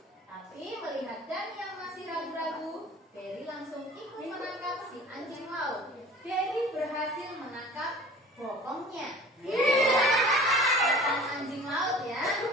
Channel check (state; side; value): normal; both; correlation 0.44